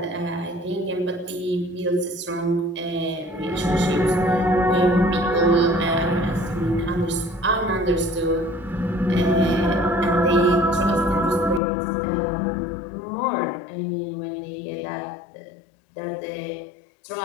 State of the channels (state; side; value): drops out; right; at 11.6 s